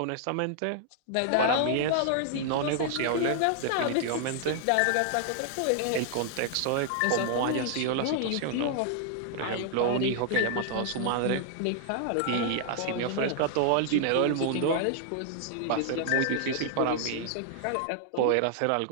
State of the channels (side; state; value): both; different; correlation 0.00